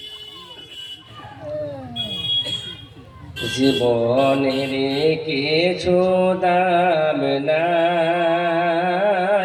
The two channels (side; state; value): both; identical; correlation 1.00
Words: জীবনের কিছু দাম